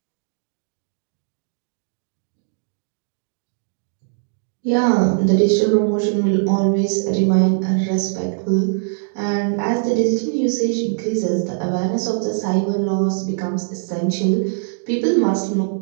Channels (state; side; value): silent; left; digital silence